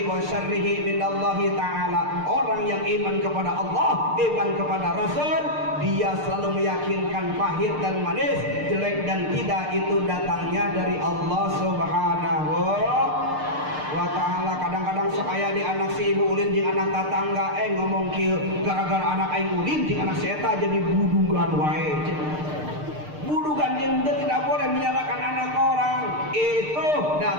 wa syarrihi minallahi ta'ala. Orang yang iman kepada Allah, iman kepada Rasul, dia selalu meyakinkan pahit dan manis, jelek dan tidak itu datangnya dari Allah Subhanahu wa ta'ala. Kadang-kadang sok aya di anak si ibu ulin jeung anak tatangga ngomong kieu, gara-gara anak aing ulin jeung anak si eta jadi budugan wae. Budugan yang tidak boleh menyalahkan anak orang, itu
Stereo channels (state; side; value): late; left; 6.6 ms